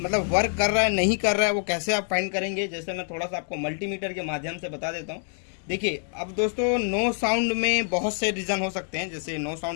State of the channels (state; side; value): silent; right; 56 dB below the other